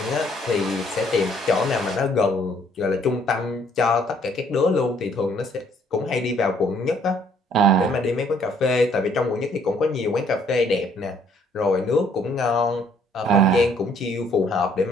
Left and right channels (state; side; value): normal; both; correlation 0.64